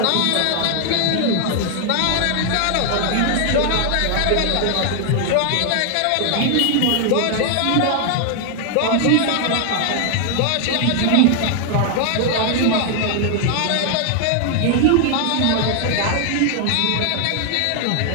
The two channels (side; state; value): both; different; correlation 0.00